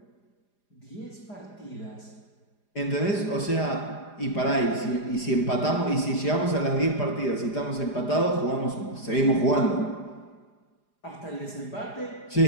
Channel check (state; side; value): late; right; 4.9 ms